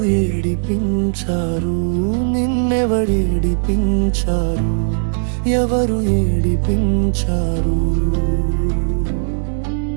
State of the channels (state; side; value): silent; left; 66 dB below the other